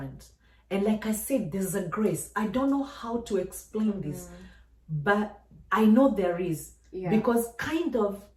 And like I said, there's a grace. I don't know how to explain this, but I know there is. Yeah. Because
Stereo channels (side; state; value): both; identical; correlation 1.00